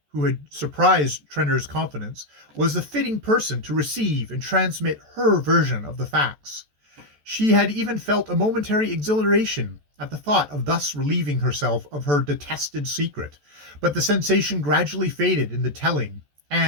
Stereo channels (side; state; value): left; late; 14 ms